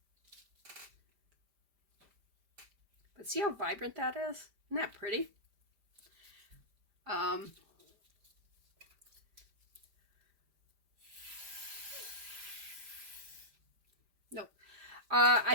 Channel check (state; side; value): late; left; 5.0 ms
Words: But see how vibrant that is? Isn't that pretty? Nope.